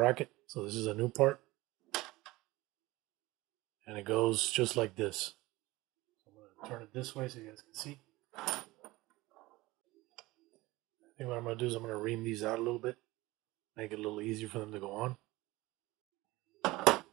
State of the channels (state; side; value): quieter; left; 20.0 dB